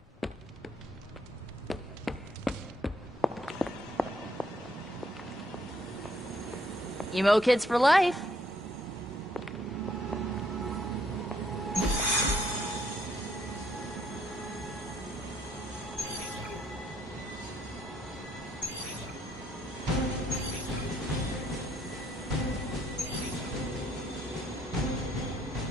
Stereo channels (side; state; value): both; normal; correlation 0.69